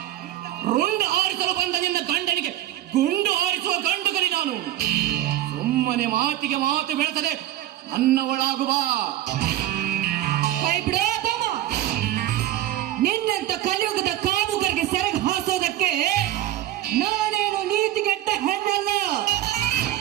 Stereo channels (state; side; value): quieter; left; 13.6 dB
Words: ರುಂಡ ಆರಿಸಲು ಬಂದ ನಿನ್ನ ಗಂಡನಿಗೆ ಗುಂಡು ಆರಿಸುವ ಗಂಡುಗಲಿ ನಾನು. ಸುಮ್ಮನೆ ಮಾತಿಗೆ ಮಾತು ಬೆಳೆಸದೆ ನನ್ನವಳಾಗುವ. ಕೈ ಬಿಡೋ ತಮ್ಮ. ನಿನ್ನಂತ ಕಲಿಯುಗದ ಕಾಮುಕರಿಗೆ ಸೆರಗು ಹಾಸೋದಕ್ಕೆ ನಾನೇನು ನೀತಿಗೆಟ್ಟ ಹೆಣ್ಣಲ್ಲ.